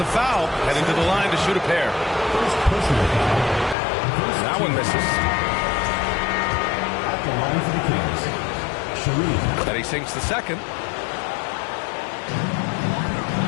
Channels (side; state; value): right; drops out; at 3.8 s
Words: foul, heading to the line to shoot a pair. That one misses. At the line for the Kings, Sharif. And he sinks the second.